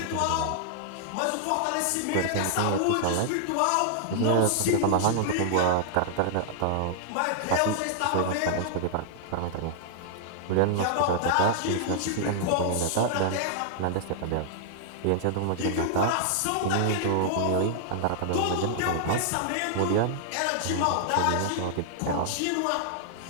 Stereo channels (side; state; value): both; different; correlation -0.01